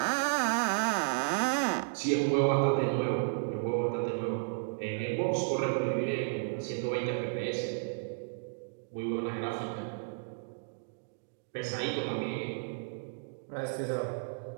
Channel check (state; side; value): silent; left; digital silence